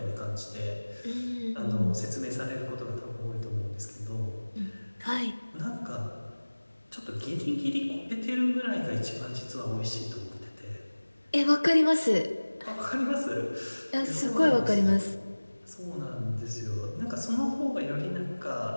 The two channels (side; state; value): both; inverted; correlation -1.00